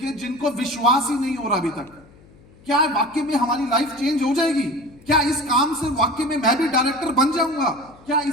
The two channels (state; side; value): noise; left; hum, 26 dB below the sound